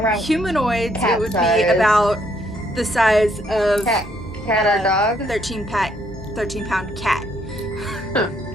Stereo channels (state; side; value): normal; both; correlation 0.70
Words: humanoids it would size. be about the size of Cat or dog? 13 pound cat. Huh.